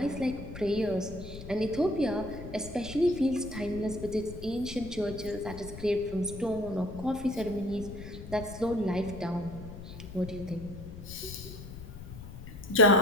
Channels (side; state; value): left; noise; rumble, 12 dB below the sound